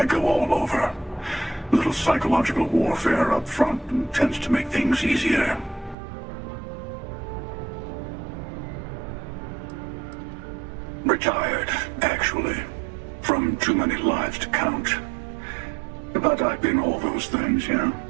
go all over. A little psychological warfare up front tends to make things easier. Retired, actually. From too many lives to count. But I've been all those things, yeah?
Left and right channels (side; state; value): left; drops out; at 6.0 s